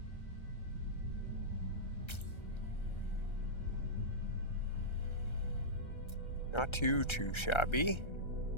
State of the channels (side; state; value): right; late; 1.3 ms